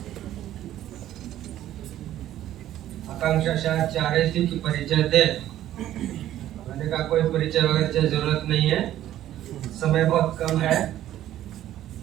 आकांक्षा शायद चाह रही थी कि परिचय दे, मैंने कहा कोई परिचय वगैरह की जरूरत नहीं है, समय बहुत कम है,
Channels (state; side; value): quieter; left; 12.8 dB